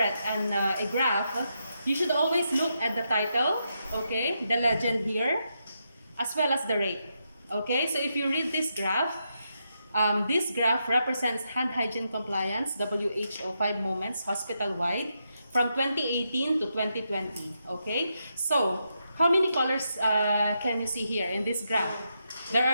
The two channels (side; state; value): both; inverted; correlation -0.83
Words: a graph, you should always look at the title, okay, the legend here, as well as the rate, okay? So if you read this graph represents hand hygiene compliance, WHO 5 moments, hospital-wide, from 2018 to 2020, okay? So, how many colors can you see here in this graph? There